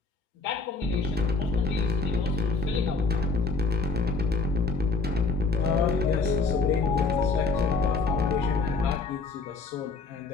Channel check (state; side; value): quieter; right; 4.1 dB